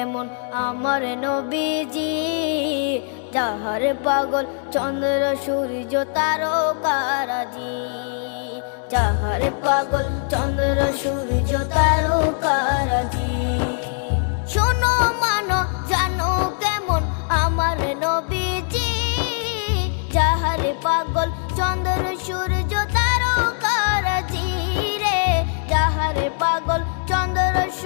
আমার নবীজি, যাহার পাগল চন্দ্র সূর্য তারকারাজি, যাহার পাগল চন্দ্র সূর্য তারকারাজি। শোনো মানো জানো কেমন আমার নবীজি, যাহার পাগল চন্দ্র সূর্য তারকারাজি রে, যাহার পাগল চন্দ্র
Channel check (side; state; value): right; silent; 56 dB below the other